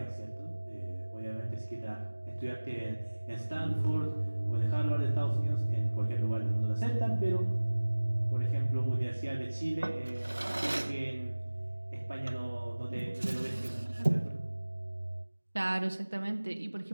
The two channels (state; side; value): inverted; both; correlation -1.00